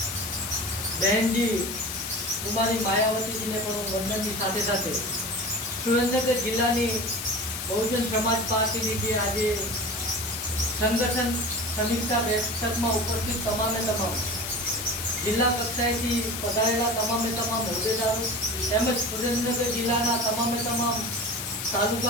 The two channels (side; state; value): left; noise; hiss, 6 dB below the sound